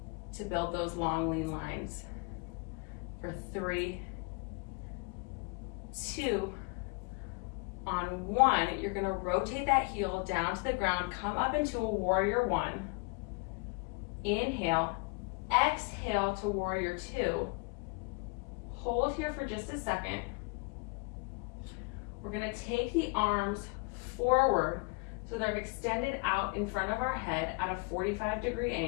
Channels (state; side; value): quieter; right; 31.2 dB